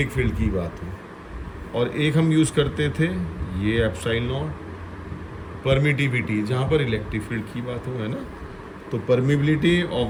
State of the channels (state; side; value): identical; both; correlation 1.00